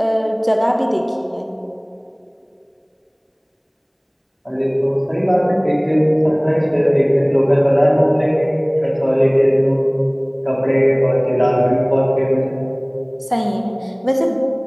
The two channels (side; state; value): both; identical; correlation 1.00